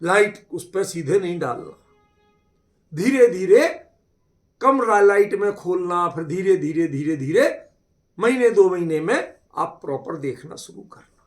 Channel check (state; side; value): identical; both; correlation 1.00